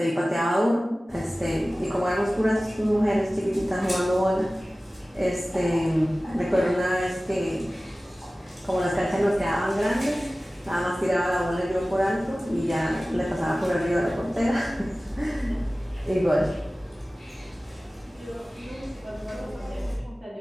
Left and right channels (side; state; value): both; normal; correlation 0.97